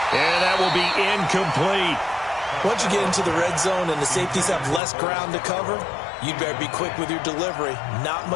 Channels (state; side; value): drops out; right; at 4.8 s